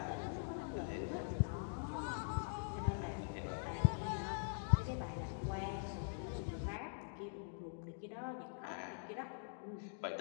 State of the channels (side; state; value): right; silent; digital silence